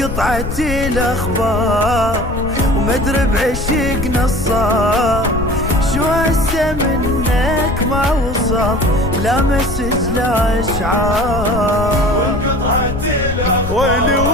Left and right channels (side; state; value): left; noise; rumble, 6 dB below the sound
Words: الاخبار ومدري بعشقنا الصار، شو هسه منك ما وصل لا مسج لا اشعار. وانقطعت الاخبار ويلي